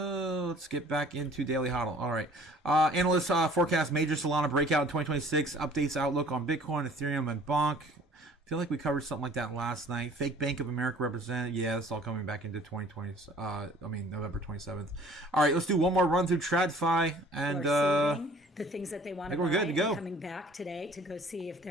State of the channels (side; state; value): both; normal; correlation 0.52